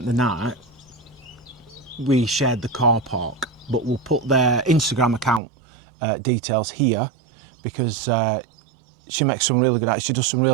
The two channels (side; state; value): left; drops out; at 5.4 s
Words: the night, we shared the car park, but we'll put their Instagram account details here because she makes some really good, she does some